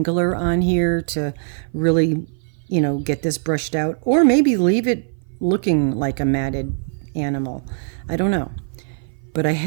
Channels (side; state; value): left; silent; 56 dB below the other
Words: on here to really, get this brushed out, or maybe leave it looking like a matted animal. I don't know. But I